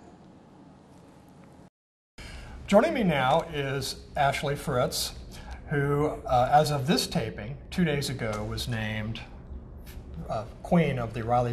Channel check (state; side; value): identical; both; correlation 1.00